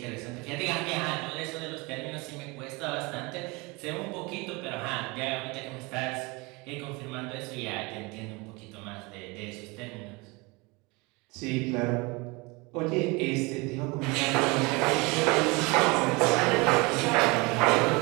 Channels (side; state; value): left; quieter; 26.0 dB